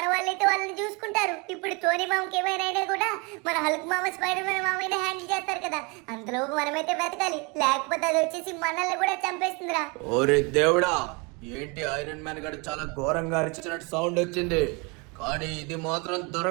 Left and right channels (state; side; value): quieter; left; 29.5 dB